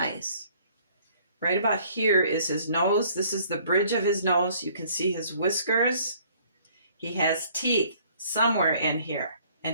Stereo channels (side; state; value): both; inverted; correlation -0.58